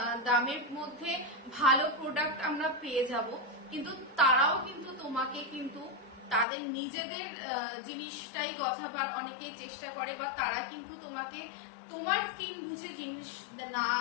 দামের মধ্যে ভালো প্রোডাক্ট আমরা পেয়ে যাব। কিন্তু তারাও কিন্তু তোমাকে কিন্তু তাদের নিজেদের জিনিসটাই গথাবার অনেকেই চেষ্টা করে, বা তারা কিন্তু তোমাকে তোমার স্কিন বুঝে জিনিস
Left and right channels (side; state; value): right; drops out; at 6.5 s